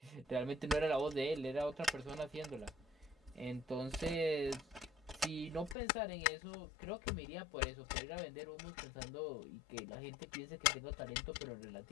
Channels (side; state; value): right; drops out; at 5.8 s